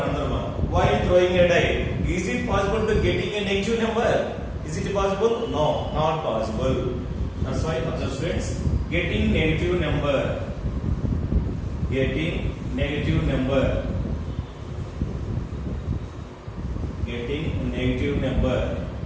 another one. While throwing a die, is it possible to getting a negative number? Is it possible? No, not possible. That's why, observe, students. Getting negative number. Getting negative number. Getting negative number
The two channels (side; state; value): both; identical; correlation 1.00